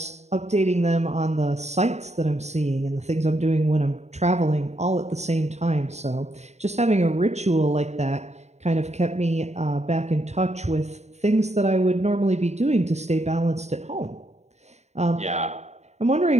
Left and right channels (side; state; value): left; late; 0.32 ms